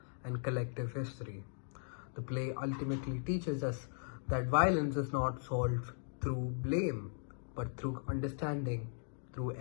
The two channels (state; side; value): silent; right; digital silence